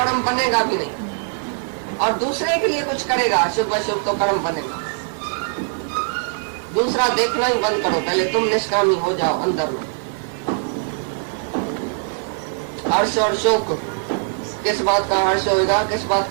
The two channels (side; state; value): left; silent; 65 dB below the other